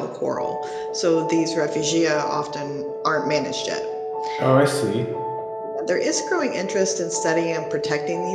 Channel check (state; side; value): identical; both; correlation 1.00